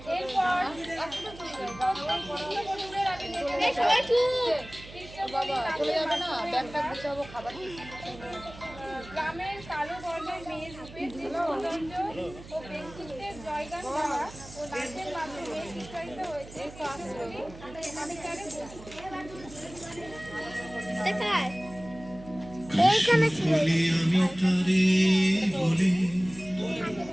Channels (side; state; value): right; noise; hum, 17 dB below the sound